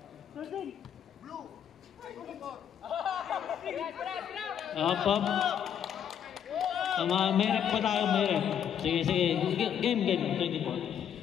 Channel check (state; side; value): quieter; right; 8.9 dB